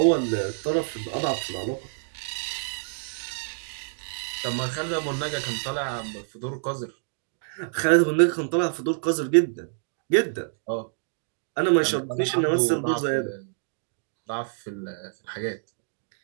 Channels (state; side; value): silent; left; digital silence